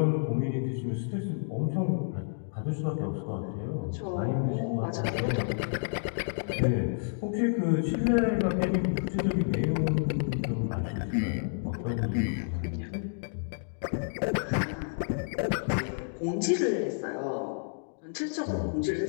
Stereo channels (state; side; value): silent; right; digital silence